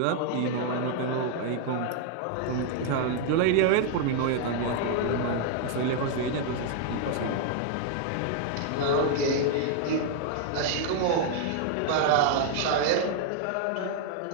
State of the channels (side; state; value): both; different; correlation 0.00